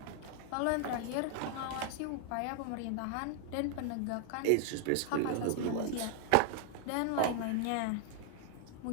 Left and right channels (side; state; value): both; different; correlation 0.00